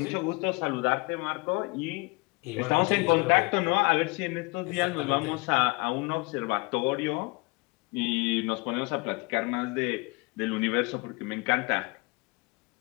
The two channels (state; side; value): quieter; right; 26.7 dB